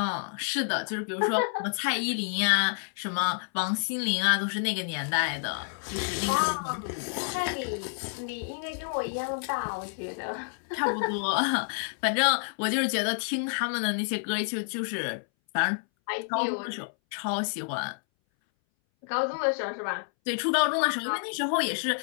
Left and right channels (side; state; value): right; silent; 59 dB below the other